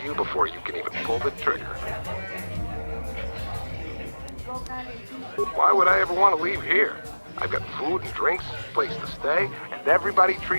you before you can even pull the trigger. Why would I ever want to leave here? I've got food and drinks, place to stay, and everybody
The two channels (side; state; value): both; inverted; correlation -1.00